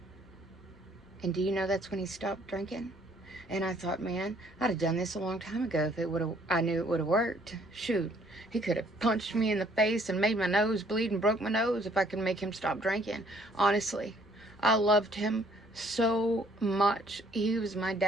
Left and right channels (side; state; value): both; normal; correlation 0.63